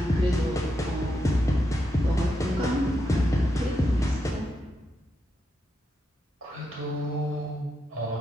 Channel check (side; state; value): both; normal; correlation 0.84